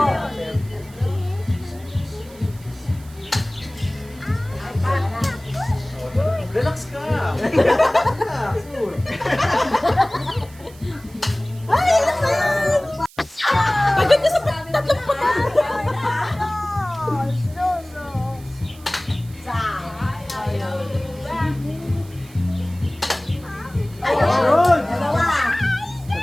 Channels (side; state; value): right; noise; hiss, 23 dB below the sound